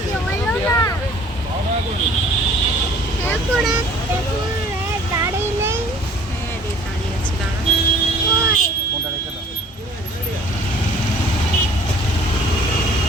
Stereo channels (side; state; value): both; normal; correlation 0.52